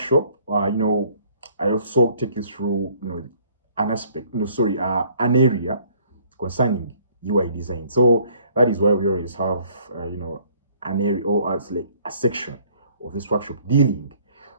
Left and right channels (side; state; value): both; inverted; correlation -0.60